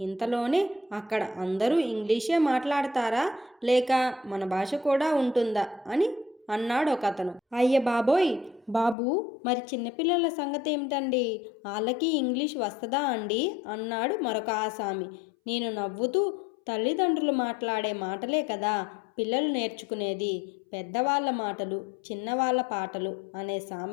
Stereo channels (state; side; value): drops out; right; at 9.0 s